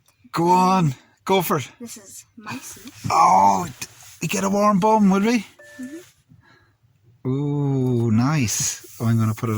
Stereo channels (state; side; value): identical; both; correlation 1.00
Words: Go on, go for it. This is my seat. Oh, we get a warm bum, would we? Ooh, nice. Oh, I'm going to put